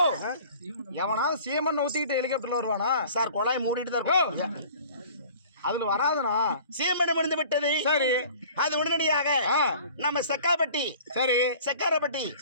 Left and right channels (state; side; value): inverted; both; correlation -0.47